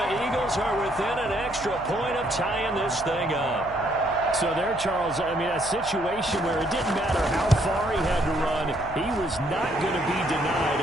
Eagles are within an extra point of tying this thing up. So there, Charles, I mean, a situation where it didn't matter how far he had to run, he was not going to be denied,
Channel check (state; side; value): noise; left; hum, 15 dB below the sound